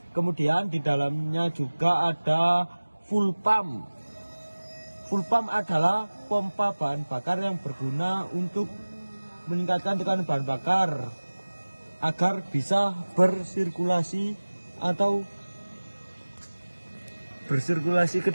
Kemudian di dalamnya juga ada full pump. Full pump adalah pompa bahan bakar yang berguna untuk meningkatkan tekanan bahan bakar agar bisa bersirkulasi ke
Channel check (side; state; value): both; inverted; correlation -1.00